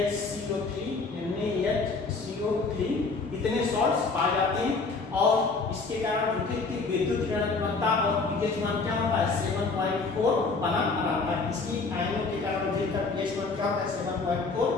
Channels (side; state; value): right; quieter; 4.1 dB